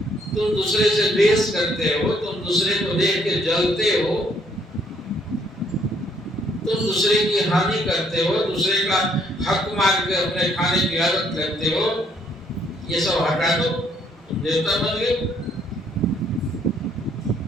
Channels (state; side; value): normal; both; correlation 0.67